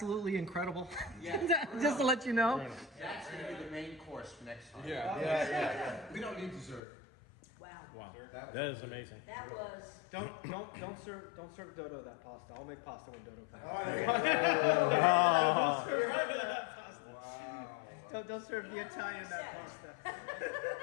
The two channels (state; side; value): drops out; right; at 6.8 s